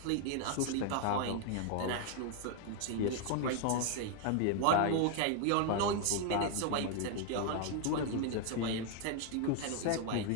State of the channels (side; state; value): both; different; correlation 0.00